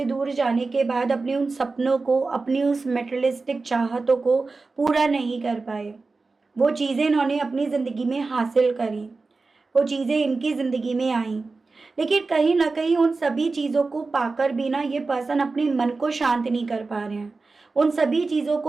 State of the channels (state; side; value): quieter; left; 3.9 dB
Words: दूर जाने के बाद अपने उन सपनों को, अपनी उस मेटेरियलिस्टिक चाहतों को पूरा नहीं कर पाए। वो चीज़ें इन्होंने अपनी ज़िंदगी में हासिल करी, वो चीज़ें इनकी ज़िंदगी में आई, लेकिन कहीं ना कहीं उन सभी चीज़ों को पाकर भी ना ये पर्सन अपने मन को शांत नहीं कर पा रहे हैं। उन सभी चीज़ों